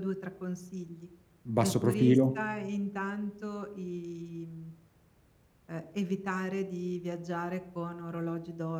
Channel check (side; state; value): both; identical; correlation 1.00